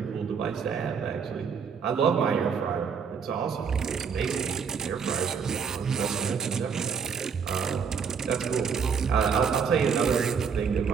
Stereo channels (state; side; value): quieter; left; 6.4 dB